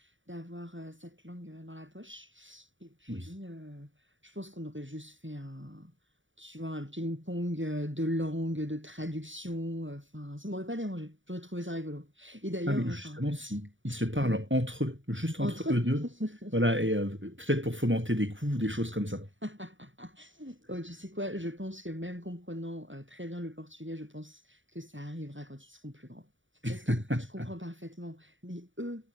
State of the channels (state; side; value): late; left; 0.56 ms